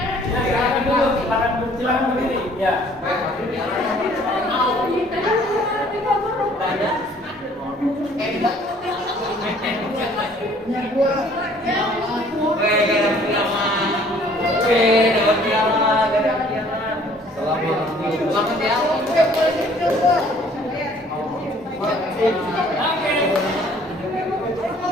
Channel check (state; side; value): normal; both; correlation 0.57